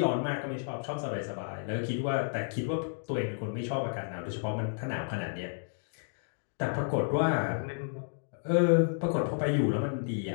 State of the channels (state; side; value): silent; right; digital silence